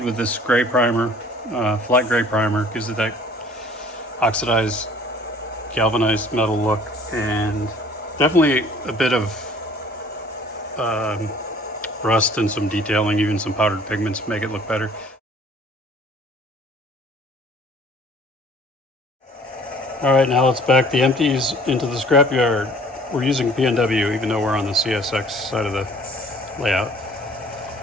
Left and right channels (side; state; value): both; normal; correlation 0.53